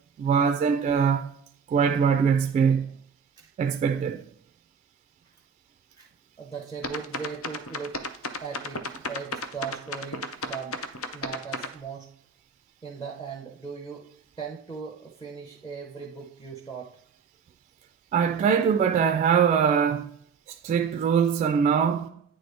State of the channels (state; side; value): quieter; left; 6.2 dB